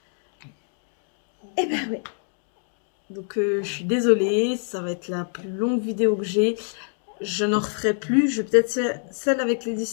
Et ben ouais. Donc je suis désolée, ça va être la plus longue vidéo que j'ai. Je n'en referai plus. Je vais peut-être celle avec les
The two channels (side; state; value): right; silent; 57 dB below the other